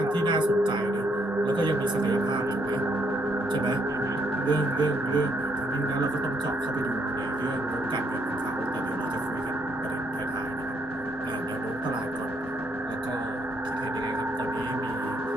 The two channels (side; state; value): both; normal; correlation 0.72